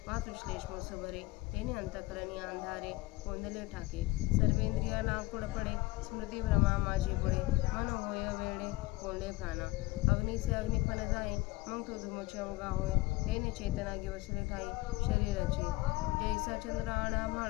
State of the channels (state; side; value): quieter; right; 20.3 dB